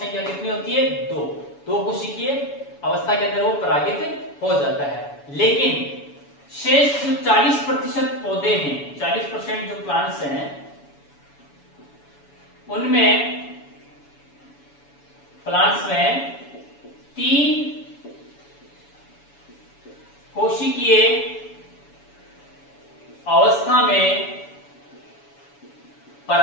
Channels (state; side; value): late; right; 7.1 ms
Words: कितनी होती है? दो कोशिकीय अवस्था के अंदर वो परागित हो जाता है। लेकिन शेष जो 40% पौधे हैं, 40% जो प्लांट्स हैं, उनमें प्लांट्स में 3 कोशिकीय अवस्था में